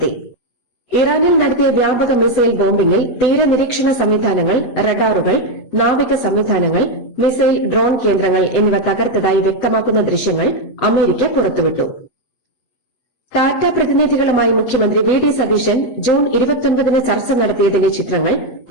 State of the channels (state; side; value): late; right; 8.0 ms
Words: ഇറാനിൽ നടത്തിയ വ്യാപക മിസൈൽ ബോംബിംഗിൽ തീരനിരീക്ഷണ സംവിധാനങ്ങൾ, റഡാറുകൾ, നാവിക സംവിധാനങ്ങൾ, മിസൈൽ ഡ്രോൺ കേന്ദ്രങ്ങൾ എന്നിവ തകർത്തതായി വ്യക്തമാക്കുന്ന ദൃശ്യങ്ങൾ അമേരിക്ക പുറത്തുവിട്ടു. ടാറ്റ പ്രതിനിധികളുമായി മുഖ്യമന്ത്രി വി.ഡി. സതീശൻ ജൂൺ 29 ചർച്ച നടത്തിയതിന്റെ ചിത്രങ്ങൾ